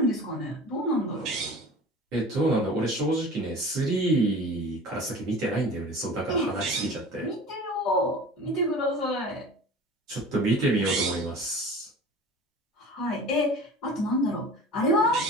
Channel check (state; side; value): normal; both; correlation 0.39